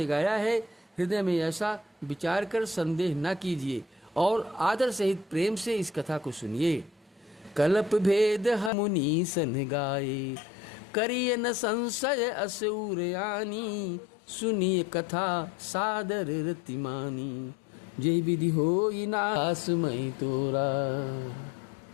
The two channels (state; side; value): drops out; right; at 8.7 s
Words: गाया है। हृदय में ऐसा विचार कर संदेह न कीजिए और आदर सहित प्रेम से इस कथा को सुनिए। कल्प भेद मुनि सन गाए, करिय न संशय असुर आनी। सुनिए कथा सादर रतिमानी, जय विधि होई नास मई तोरा।